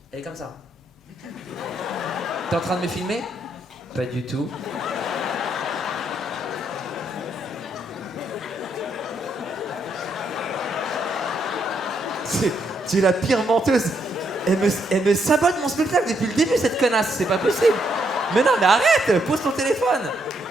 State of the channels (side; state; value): both; normal; correlation 0.75